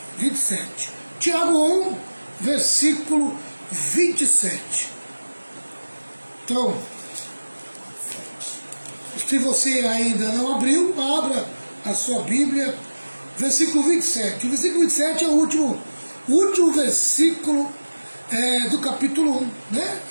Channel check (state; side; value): inverted; both; correlation -1.00